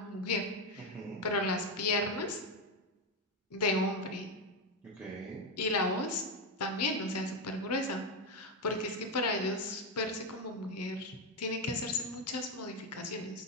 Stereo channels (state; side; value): normal; both; correlation 0.09